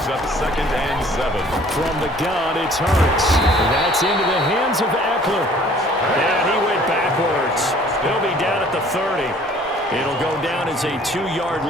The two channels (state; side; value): normal; both; correlation 0.54